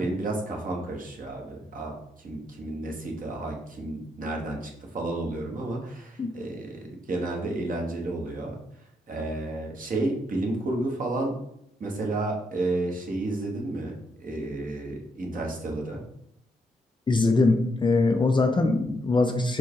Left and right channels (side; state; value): both; normal; correlation 0.78